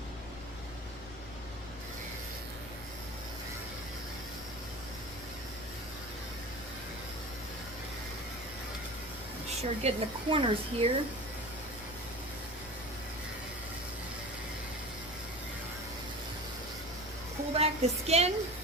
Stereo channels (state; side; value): noise; left; rumble, 16 dB below the sound